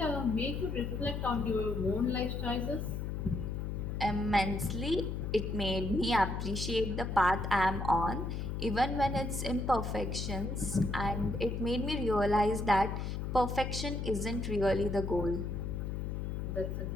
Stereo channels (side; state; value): left; noise; hum, 3 dB below the sound